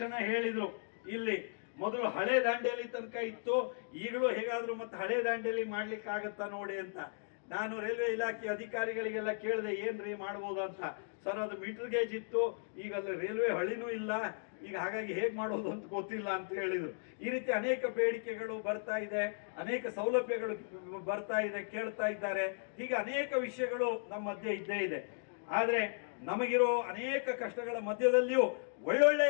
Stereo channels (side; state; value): right; silent; digital silence